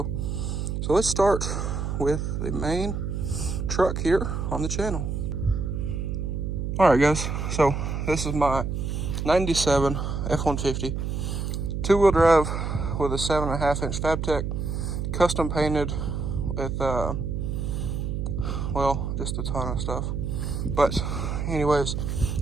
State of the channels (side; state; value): right; noise; hum, 2 dB below the sound